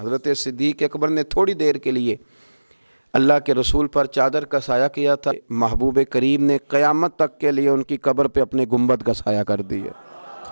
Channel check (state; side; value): inverted; both; correlation -1.00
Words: صدیق اکبر نے تھوڑی دیر کے لیے اللہ کے رسول پر چادر کا سایہ کیا تھا، محبوب کریم نے قیامت تک کے لیے ان کی قبر پہ اپنے گنبد کا سایہ کر دیا،